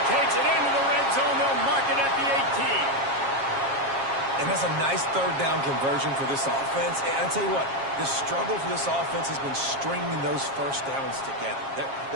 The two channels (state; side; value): late; left; 7.4 ms